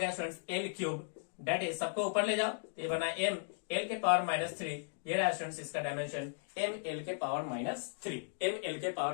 students L cube. That is सबको ऊपर ले जाओ तो ये बना एम एल के पावर -3। ये रहा स्टूडेंट्स इसका डायमेंशन एम एल के पावर -3, एम एल के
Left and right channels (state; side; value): silent; right; digital silence